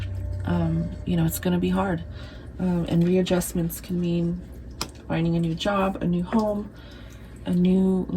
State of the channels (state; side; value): identical; both; correlation 1.00